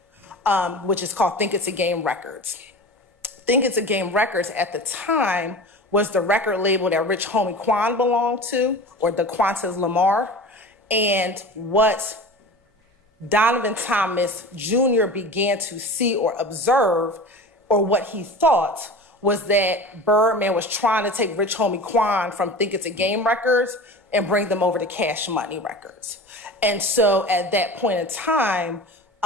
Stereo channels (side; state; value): both; normal; correlation 0.34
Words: which is called Think It's a Game Records. Think It's a Game Records at the time was the record label that Rich Homie Quan belonged to, or the Qantas Lamar. And what Donovan Thomas Jr. began to see or observe, or what he thought, was that Birdman was trying to take Rich Homie Quan from Think It's a Game Records and bring them over to Cash Money Records. And so at that point in time,